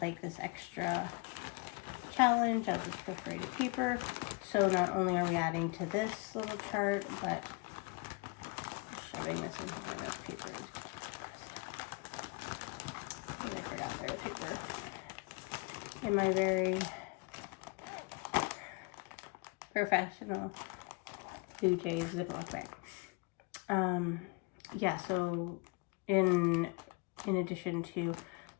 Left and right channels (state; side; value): quieter; right; 27.3 dB